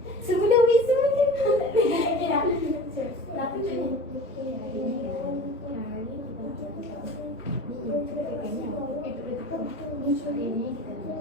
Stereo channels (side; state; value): both; normal; correlation 0.38